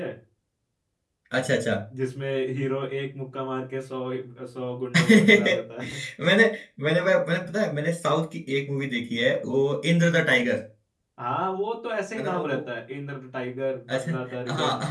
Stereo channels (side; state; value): both; identical; correlation 1.00